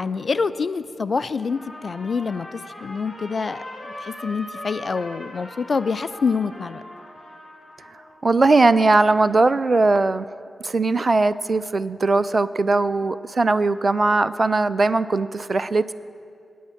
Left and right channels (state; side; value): normal; both; correlation 0.91